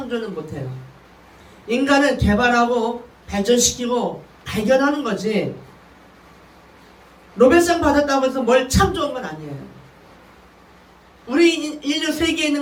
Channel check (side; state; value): both; identical; correlation 1.00